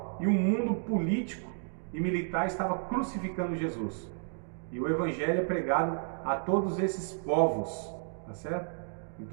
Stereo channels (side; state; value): left; silent; digital silence